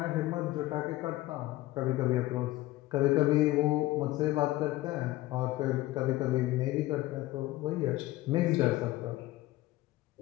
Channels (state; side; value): quieter; right; 17.3 dB